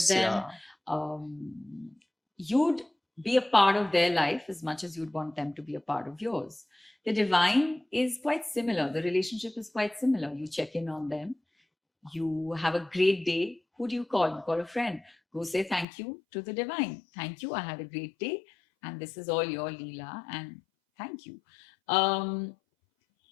them. You'd be a part of their life as much as you'd want them to be a part of yours. The divine is quite similar. The relationship is quite similar. You check in on them. You have a great day. Who do you call? You call a friend. Go say thank you to the divine. Thank you. I had a great day. And this is all your Leela. And thank you.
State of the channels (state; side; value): drops out; right; at 15.9 s